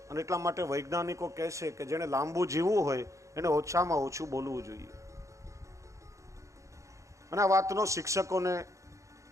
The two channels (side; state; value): left; late; 0.15 ms